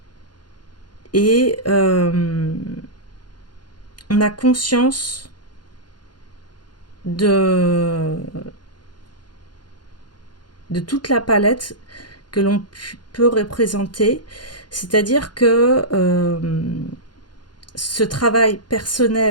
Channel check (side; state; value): right; late; 0.71 ms